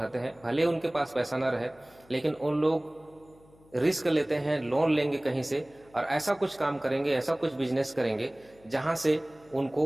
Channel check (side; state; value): left; noise; hum, 28 dB below the sound